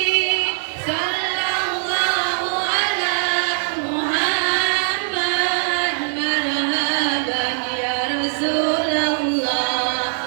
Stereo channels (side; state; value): left; silent; 65 dB below the other